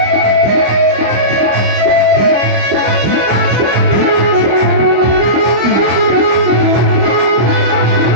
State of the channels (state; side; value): late; left; 25 ms